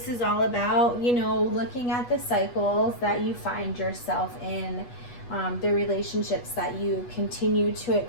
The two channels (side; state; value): right; late; 8.2 ms